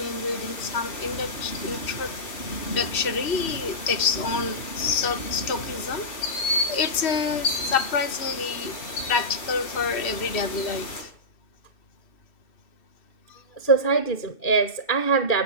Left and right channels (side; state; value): right; late; 2.7 ms